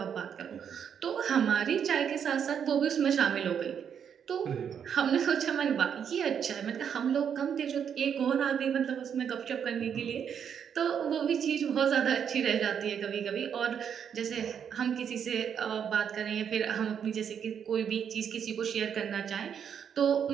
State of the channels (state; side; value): quieter; left; 7.9 dB